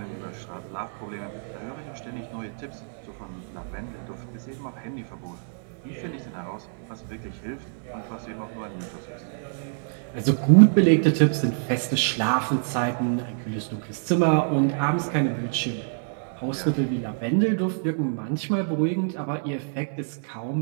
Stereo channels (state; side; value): silent; left; digital silence